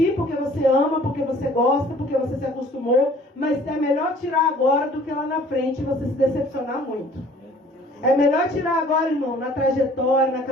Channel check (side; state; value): both; normal; correlation 0.53